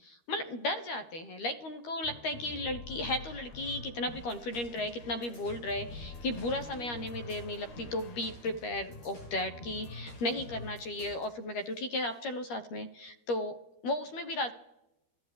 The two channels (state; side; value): late; right; 13 ms